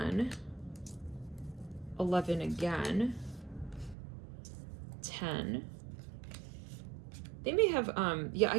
11 again, 10. They may have, yeah,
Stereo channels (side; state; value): left; drops out; at 4.0 s